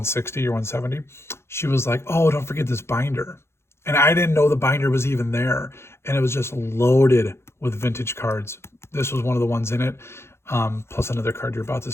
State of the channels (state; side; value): late; right; 0.12 ms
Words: or $170, she was like, "Oh, don't forget this binder." And I didn't know the binder was even there. And it was just loaded with vintage cards. This was one of the ones in it, plus another card you're about to